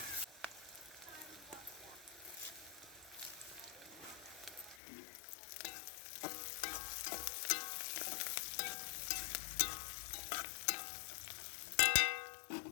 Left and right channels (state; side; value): drops out; right; at 4.8 s